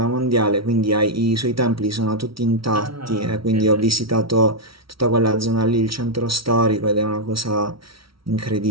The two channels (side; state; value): left; late; 0.75 ms